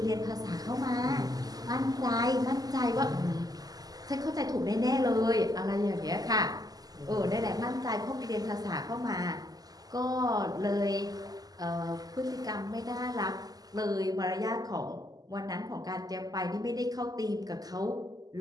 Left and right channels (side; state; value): left; late; 0.18 ms